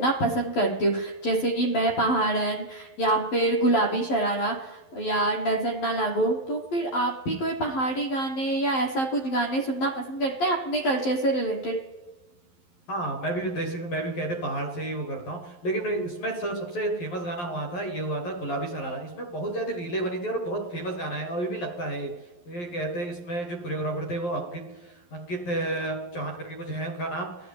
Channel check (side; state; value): right; late; 11 ms